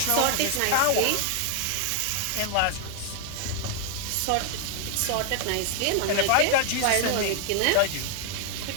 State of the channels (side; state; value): both; different; correlation 0.00